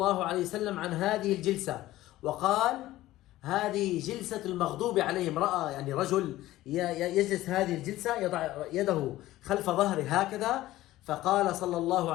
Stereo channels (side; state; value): right; quieter; 15.9 dB